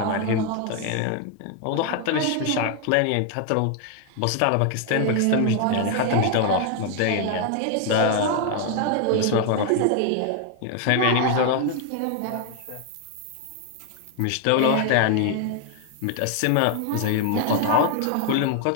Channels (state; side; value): different; both; correlation 0.00